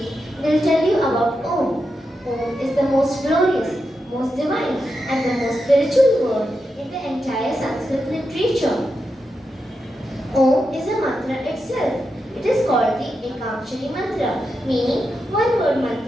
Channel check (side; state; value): both; normal; correlation 0.87